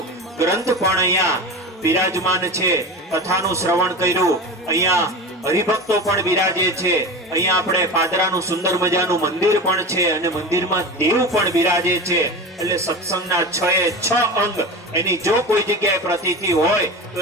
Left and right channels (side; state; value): both; normal; correlation 0.28